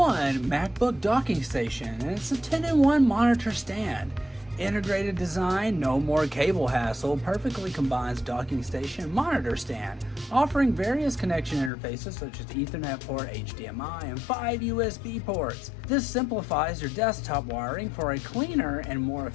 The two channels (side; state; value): right; drops out; at 11.7 s